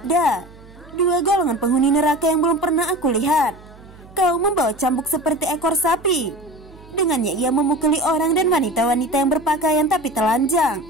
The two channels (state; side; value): noise; right; hum, 22 dB below the sound